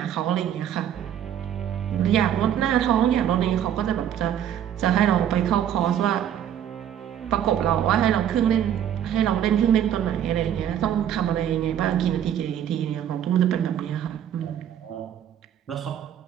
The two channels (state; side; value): quieter; left; 10.0 dB